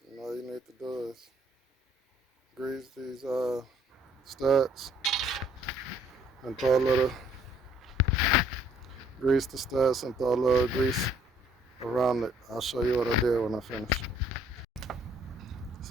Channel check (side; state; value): both; normal; correlation 0.62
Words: And all you need to do is grease these studs and throw a little grease the studs and throw a little grease around it. I'll show you what I did when I finish.